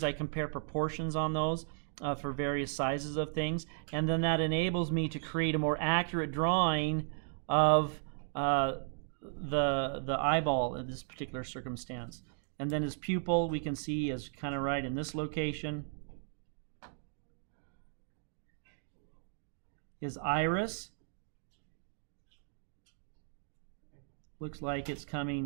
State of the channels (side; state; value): left; silent; digital silence